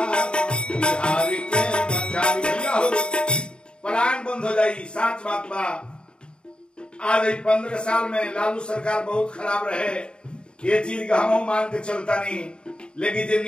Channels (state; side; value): late; right; 0.051 ms